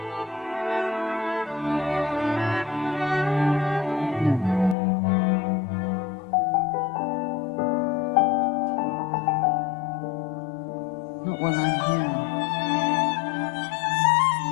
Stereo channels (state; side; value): drops out; right; at 4.8 s